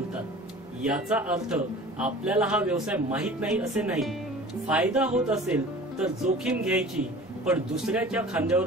याचा अर्थ आपल्याला हा व्यवसाय माहित नाही असे नाही. फायदा होत असेल तर जोखीम घ्यायची, पण दुसऱ्याच्या खांद्यावर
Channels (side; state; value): both; normal; correlation 0.43